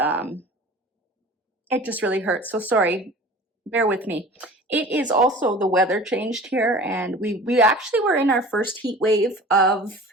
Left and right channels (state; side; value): normal; both; correlation 0.41